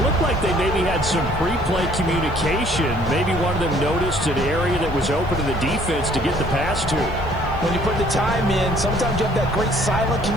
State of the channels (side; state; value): left; noise; hiss, 30 dB below the sound